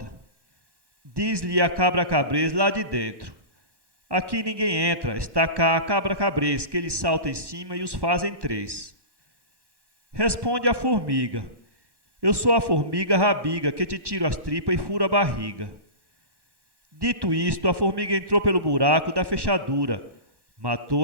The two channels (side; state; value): left; late; 1.1 ms